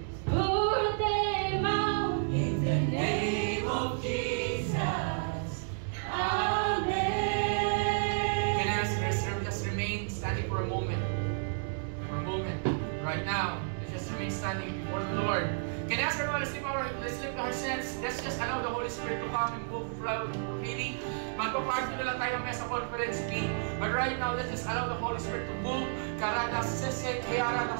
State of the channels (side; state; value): left; silent; digital silence